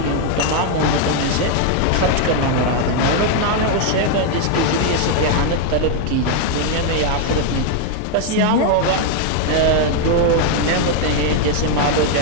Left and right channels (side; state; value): both; different; correlation 0.00